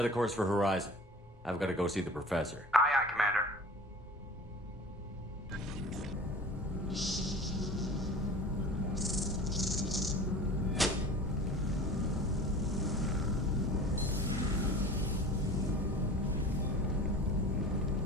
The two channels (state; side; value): normal; both; correlation 0.39